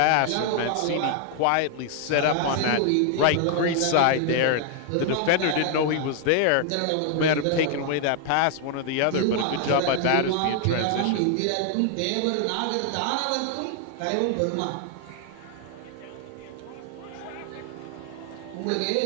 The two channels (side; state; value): both; different; correlation 0.00